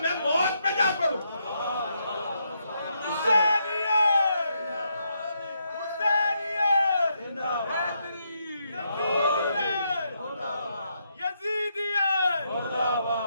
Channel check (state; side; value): inverted; both; correlation -0.78